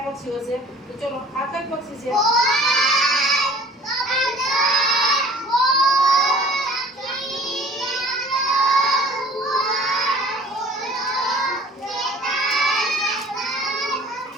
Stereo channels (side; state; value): both; normal; correlation 0.49